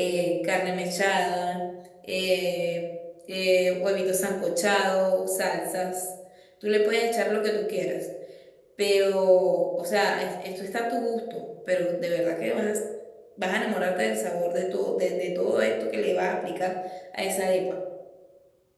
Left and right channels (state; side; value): identical; both; correlation 1.00